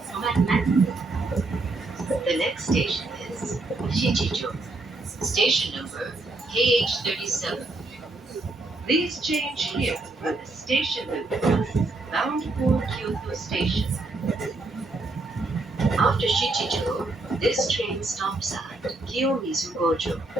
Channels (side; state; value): left; quieter; 3.1 dB